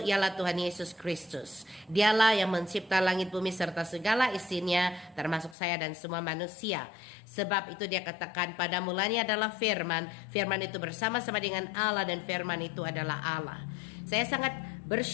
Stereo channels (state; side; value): drops out; right; at 5.6 s